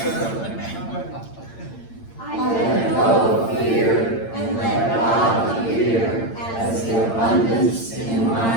I let go of fear and let God appear as the abundance in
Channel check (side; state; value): right; late; 8.8 ms